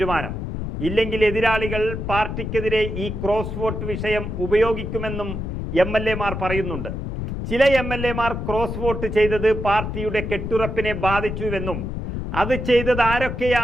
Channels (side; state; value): left; noise; rumble, 5 dB below the sound